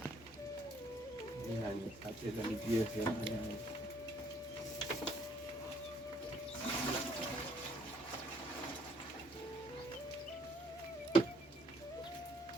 खाते झाली GSM आणि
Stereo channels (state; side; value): normal; both; correlation 0.64